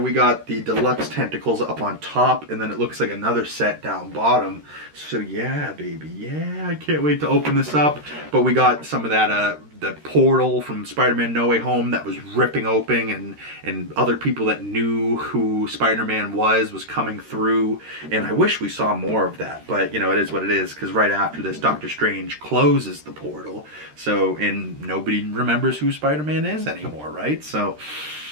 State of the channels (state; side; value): late; left; 13 ms